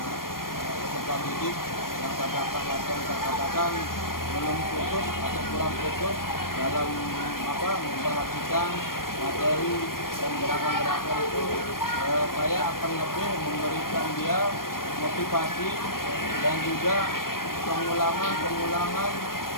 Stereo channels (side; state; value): right; late; 0.91 ms